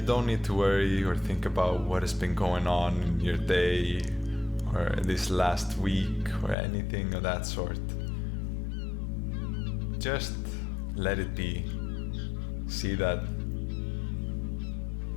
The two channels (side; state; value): right; drops out; at 6.6 s